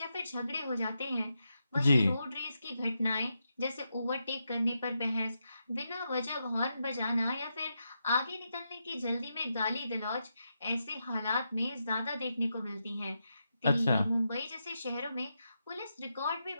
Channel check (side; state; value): both; inverted; correlation -0.85